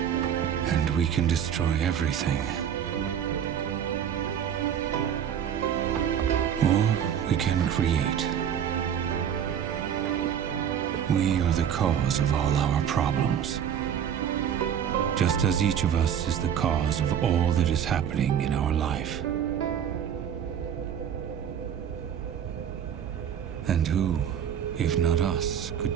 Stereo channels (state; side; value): quieter; left; 8.9 dB